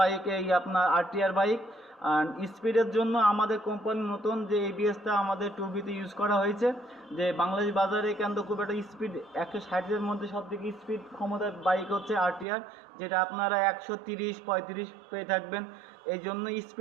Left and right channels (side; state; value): left; drops out; at 12.5 s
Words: এই আপনার আরটিআর বাইক। আর স্পিডের জন্য আমাদের কোম্পানি নতুন যে এবিএসটা আমাদের 2Bতে ইউজ করা হয়েছে, যে বাংলাদেশ বাজারে কিন্তু খুব একটা স্পিড 160-এর মধ্যে সব থেকে স্পিড ক্ষমতার বাইক হচ্ছে আরটিআর, যেটা আপনারা 130-35 পেয়ে থাকবেন। এই জন্য